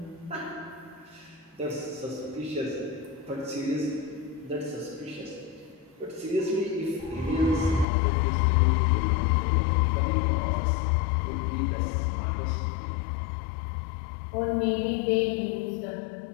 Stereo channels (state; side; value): drops out; right; at 7.9 s